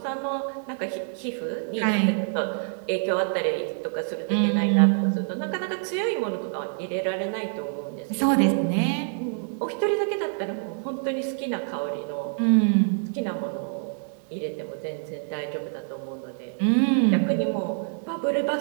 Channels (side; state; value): left; silent; 61 dB below the other